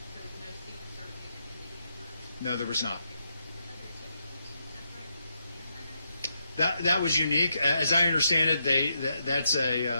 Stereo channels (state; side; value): inverted; both; correlation -0.81